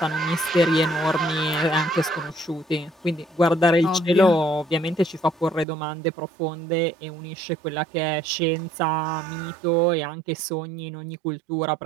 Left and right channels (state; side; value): drops out; left; at 5.7 s